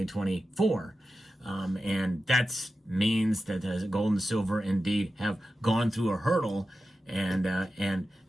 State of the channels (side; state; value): both; normal; correlation 0.93